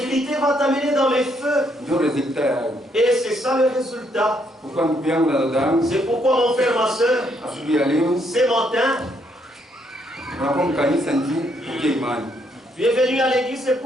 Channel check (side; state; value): both; normal; correlation 0.73